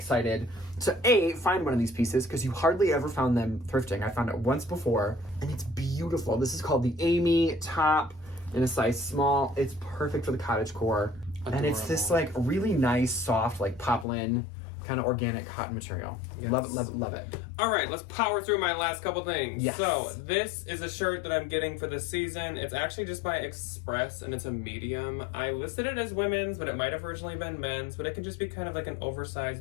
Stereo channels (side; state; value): right; drops out; at 14.1 s